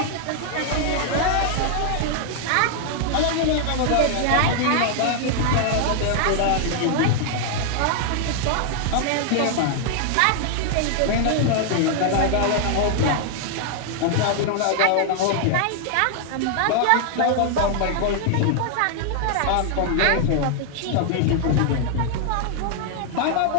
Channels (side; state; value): both; different; correlation 0.00